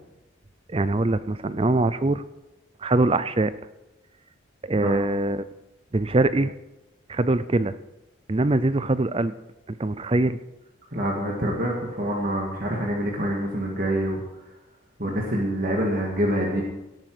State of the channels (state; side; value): normal; both; correlation 0.63